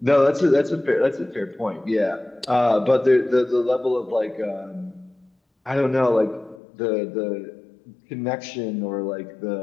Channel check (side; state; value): right; drops out; at 6.6 s